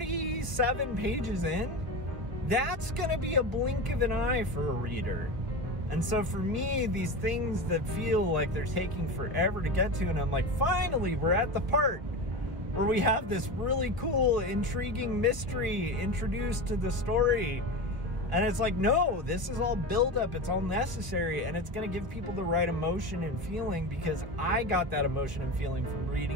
pages in, that's gonna be a blink of an eye for a reader. And so for me, these things that feel like they're taking forever to get to, and I'm like, finally, we're at the part where we have this really cool, intriguing mystery introduced to the story. And it's like, no, this is all buildup, it's all necessary, and it's gonna give people the right emotion and feeling, because I got that emotion and feeling from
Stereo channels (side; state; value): left; late; 1.3 ms